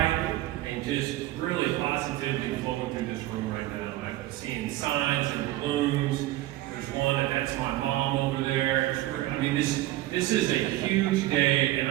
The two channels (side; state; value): left; quieter; 15.9 dB